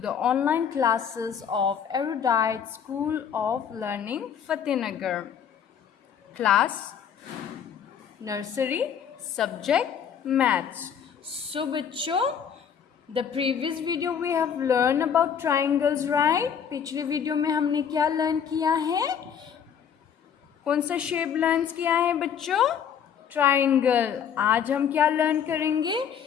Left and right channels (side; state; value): right; quieter; 7.9 dB